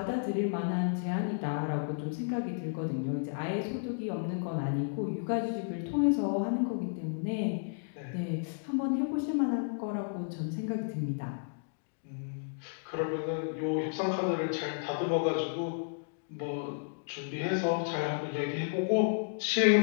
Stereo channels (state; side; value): silent; right; digital silence